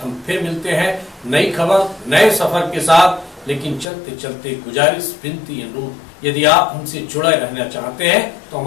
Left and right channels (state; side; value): drops out; right; at 3.9 s